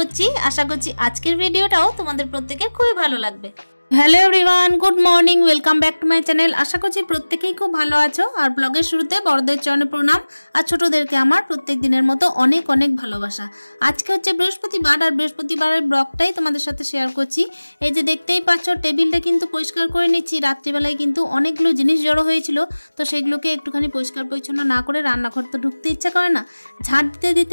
আশা করছি আজকের ভিডিওটাও তোমাদের প্রত্যেকের খুবই ভালো লাগবে। Hello everyone, good morning, welcome back to my channel. আশা করছি প্রত্যেকেই খুব ভালো আছো। আর ব্লগের শুরুতে বড়দের চরণে প্রণাম, আর ছোটদেরকে আমার প্রত্যেক দিনের মতো অনেক অনেক ভালোবাসা। আজকে হচ্ছে বৃহস্পতিবার, আর বৃহস্পতিবারের ব্লগটাই তোমাদের সাথে শেয়ার করছি। এই যে দেখতেই পাচ্ছ, টেবিলটা কিন্তু পরিষ্কার করে নিচ্ছি। রাত্রিবেলায় কিন্তু অনেকগুলো জিনিস জড়ো হয়েছিল, তো সেগুলোকে একটুখানি পরিষ্কার পরিচ্ছন্ন না করে রান্নাঘর তো ঢুকতে ইচ্ছা করে না। ঝাড় দিতে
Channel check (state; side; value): inverted; both; correlation -1.00